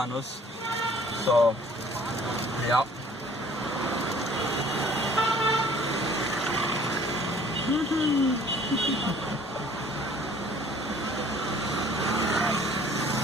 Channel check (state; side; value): normal; both; correlation 0.54